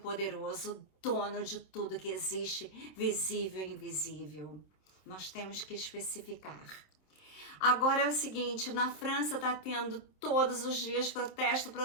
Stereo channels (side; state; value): right; late; 27 ms